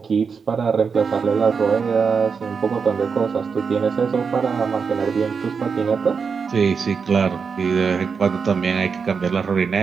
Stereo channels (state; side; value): quieter; left; 5.7 dB